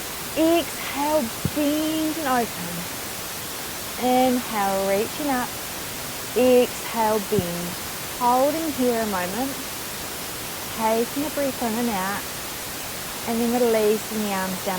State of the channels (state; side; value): identical; both; correlation 1.00